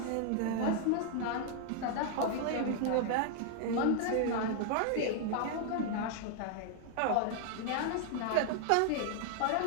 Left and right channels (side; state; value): both; different; correlation 0.00